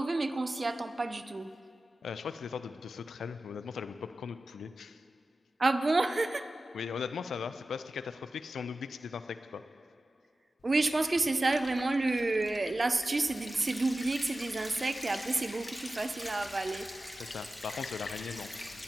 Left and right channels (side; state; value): both; normal; correlation 0.94